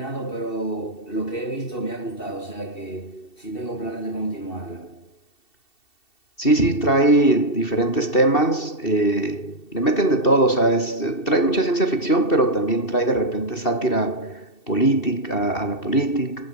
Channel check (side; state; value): right; late; 2.7 ms